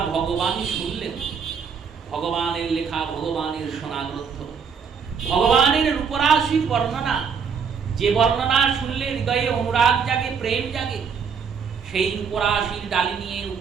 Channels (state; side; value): quieter; left; 6.4 dB